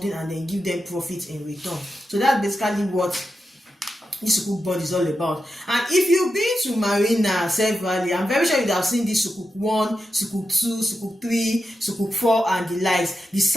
and then give them profit in return. So that's basically what this Sukuk bond is all about. And if you've been to Marina, Self Valley, I'm very sure you have seen this Sukuk 1, Sukuk 2, Sukuk 3, Sukuk 4 and the likes, the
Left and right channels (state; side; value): normal; both; correlation 0.89